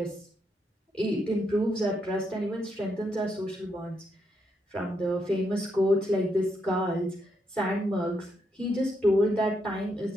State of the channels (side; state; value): both; normal; correlation 0.79